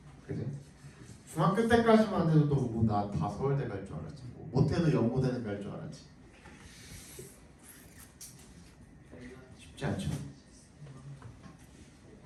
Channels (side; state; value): both; identical; correlation 1.00